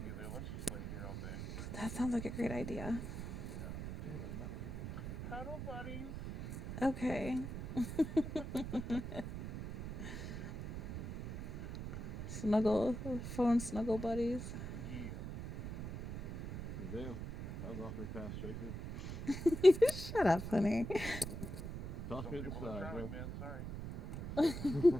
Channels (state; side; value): noise; right; rumble, 7 dB below the sound